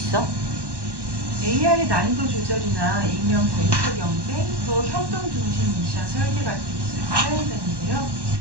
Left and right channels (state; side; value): late; left; 1.1 ms